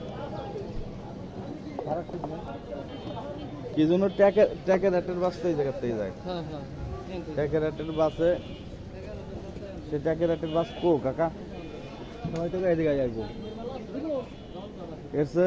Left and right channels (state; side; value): identical; both; correlation 1.00